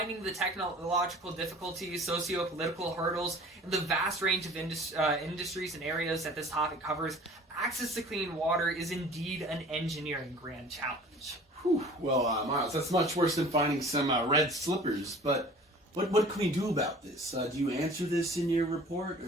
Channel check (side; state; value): both; normal; correlation 0.46